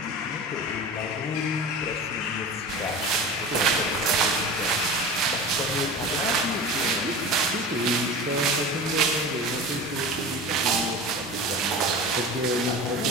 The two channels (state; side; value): normal; both; correlation 0.32